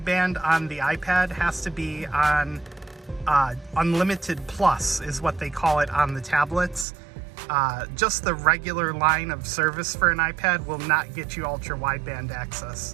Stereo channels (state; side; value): drops out; left; at 6.9 s